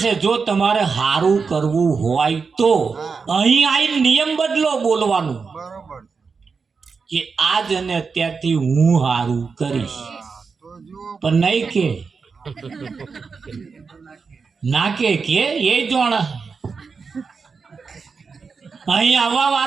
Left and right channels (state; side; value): quieter; left; 5.1 dB